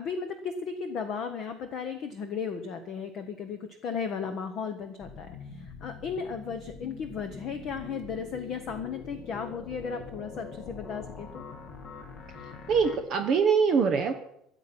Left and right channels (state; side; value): normal; both; correlation 0.52